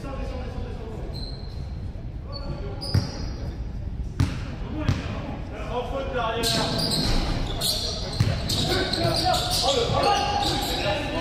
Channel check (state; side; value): identical; both; correlation 1.00